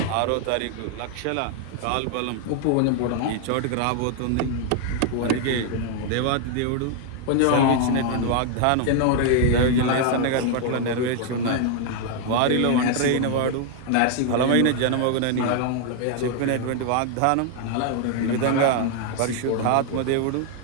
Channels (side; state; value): both; different; correlation 0.00